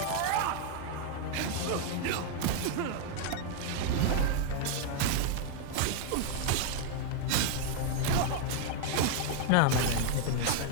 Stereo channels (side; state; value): both; different; correlation 0.00